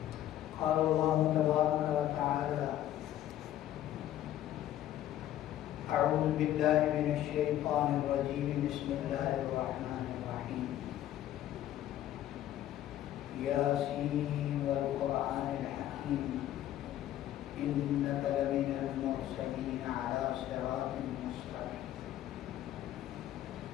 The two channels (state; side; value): quieter; right; 12.6 dB